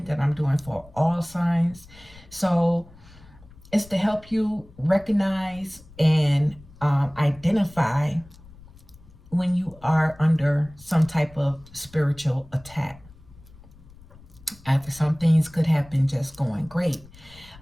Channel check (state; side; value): noise; left; rumble, 23 dB below the sound